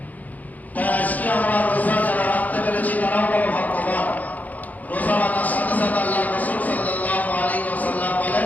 তাই আজকে আমরা রোজা যারা রাখতে পেরেছি তারাও বড় ভাগ্যবান। রোজা রাখার সাথে সাথে আল্লাহ রাসূল সাল্লাল্লাহু আলাইহি ওয়াসাল্লাম বলেন,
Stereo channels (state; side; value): late; right; 0.079 ms